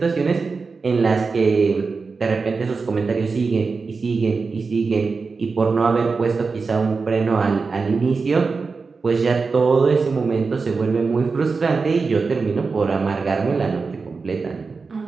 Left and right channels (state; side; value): quieter; left; 4.5 dB